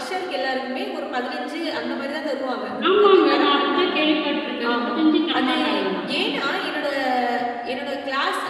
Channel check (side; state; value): both; identical; correlation 1.00